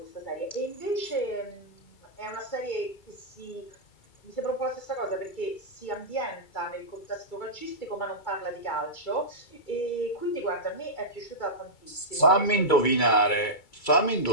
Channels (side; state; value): right; late; 2.3 ms